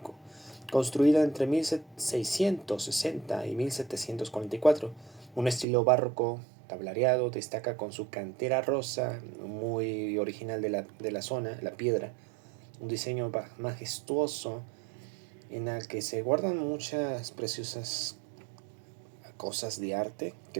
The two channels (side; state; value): left; drops out; at 5.7 s